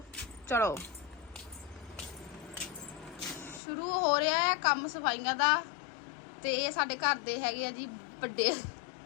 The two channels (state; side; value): drops out; right; at 3.6 s